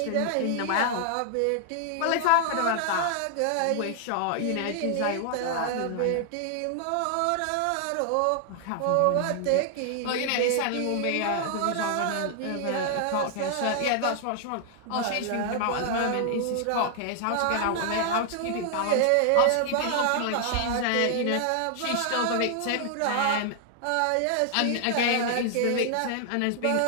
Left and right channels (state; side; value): different; both; correlation 0.00